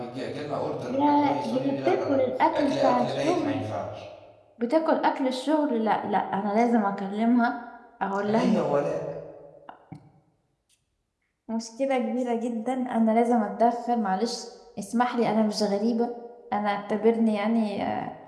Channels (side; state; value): both; identical; correlation 1.00